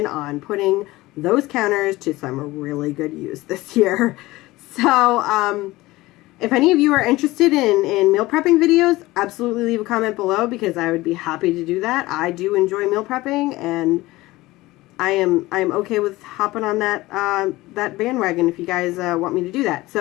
on putting those counters to some really good use this year. So, if any of you are interested in meal prepping videos, absolutely leave a comment below because I would be happy to do that. I do enjoy meal prepping, and I'm okay with hopping on that bandwagon if you guys want me to do that.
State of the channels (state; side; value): quieter; right; 19.1 dB